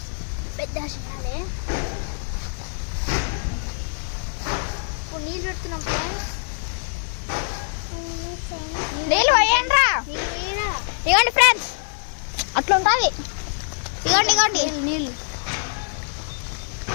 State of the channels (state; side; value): silent; right; digital silence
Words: పెద్ద చేయాలి. ఇప్పుడు నీళ్ళు పెడుతున్నాం ఫ్రెండ్స్. నీళ్ళు పోయండి. ఇవ్వండి ఫ్రెండ్స్, అట్లా ఉంటుంది. ఇవ్వండి